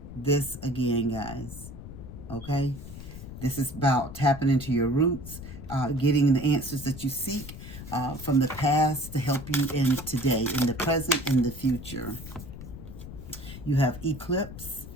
guys. Okay? This is about tapping into your roots, getting the answers that you seek from the past to help you in today, in the present, in the future. You have eclipse.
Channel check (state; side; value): noise; left; rumble, 12 dB below the sound